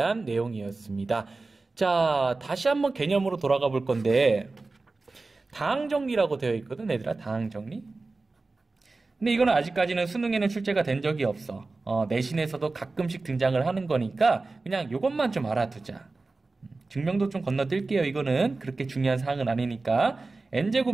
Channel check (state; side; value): quieter; left; 3.6 dB